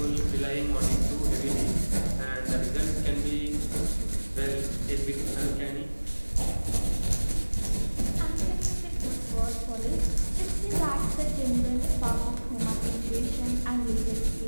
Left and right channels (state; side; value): inverted; both; correlation -1.00